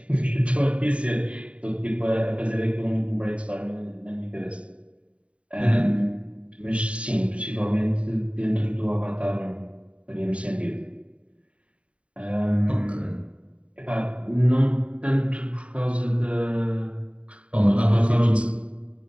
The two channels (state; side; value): late; left; 0.063 ms